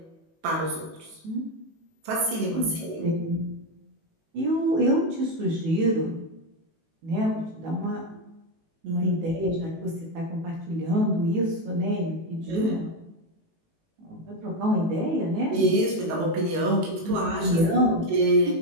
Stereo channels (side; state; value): left; late; 19 ms